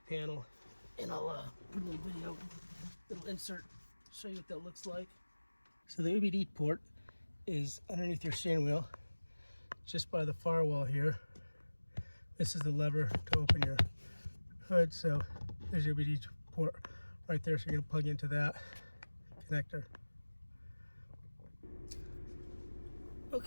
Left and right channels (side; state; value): both; inverted; correlation -1.00